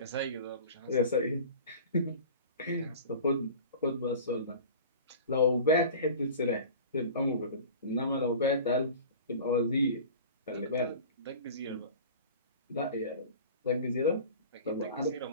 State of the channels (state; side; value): inverted; both; correlation -0.39